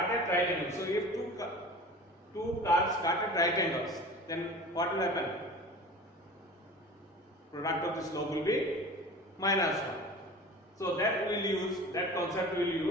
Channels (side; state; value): both; normal; correlation 0.38